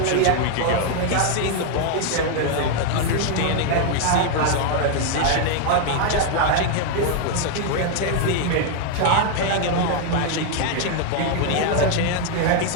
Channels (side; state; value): both; different; correlation 0.00